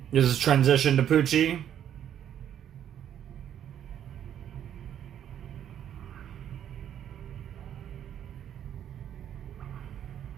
This is transition to Pucci.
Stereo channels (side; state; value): left; quieter; 9.9 dB